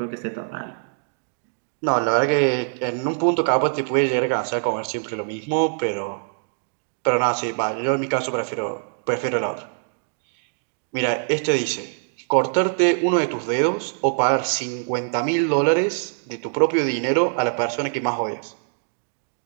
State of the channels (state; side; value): silent; left; digital silence